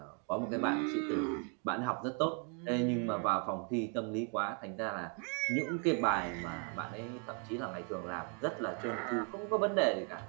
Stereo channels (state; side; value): quieter; left; 39.7 dB